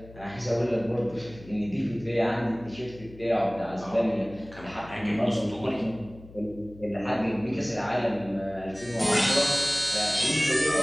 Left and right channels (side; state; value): left; noise; hum, 19 dB below the sound